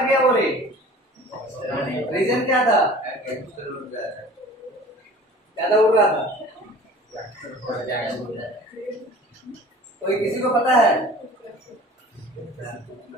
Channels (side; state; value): both; normal; correlation 0.44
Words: गया बोले? रीजन क्या था? ज्यादा उड़ रहा था। कोई किसी को पता है?